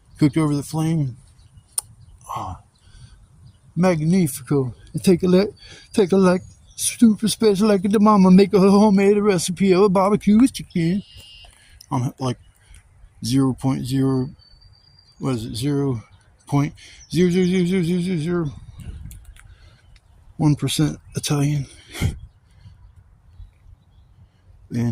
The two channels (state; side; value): identical; both; correlation 1.00